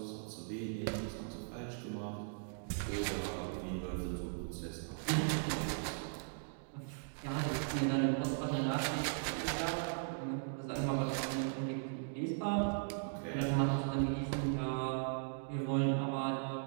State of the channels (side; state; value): left; silent; digital silence